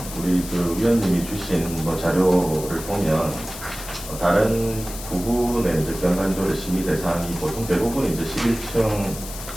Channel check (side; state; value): left; noise; hiss, 12 dB below the sound